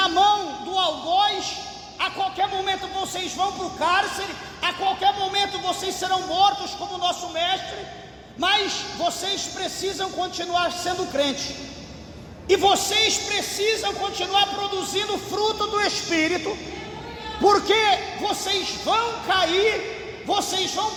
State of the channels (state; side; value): identical; both; correlation 1.00